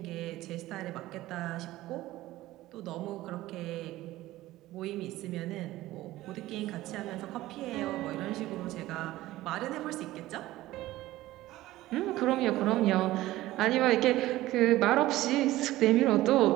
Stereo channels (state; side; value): quieter; left; 16.5 dB